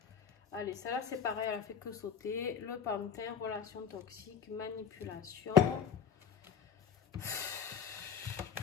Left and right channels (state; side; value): quieter; right; 7.3 dB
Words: Allez, celle-là, c'est pareil, elle a fait que sauter. Le pantin, relation toxique, manipulation.